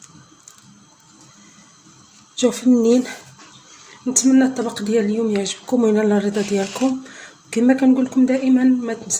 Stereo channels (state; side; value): identical; both; correlation 1.00